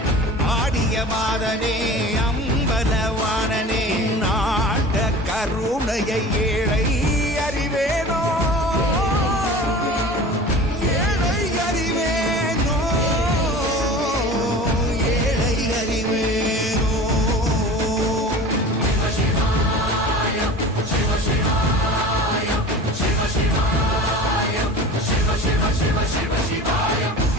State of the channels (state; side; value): normal; both; correlation 0.38